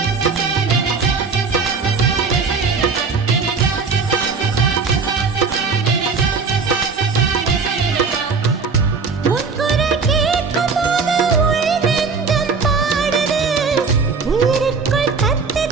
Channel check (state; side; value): quieter; left; 4.9 dB